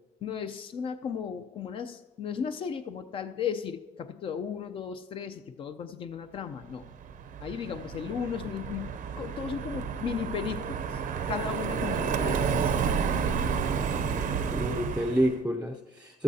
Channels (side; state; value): both; normal; correlation 0.47